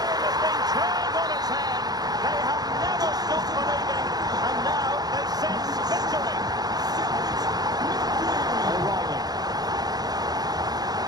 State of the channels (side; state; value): left; late; 0.19 ms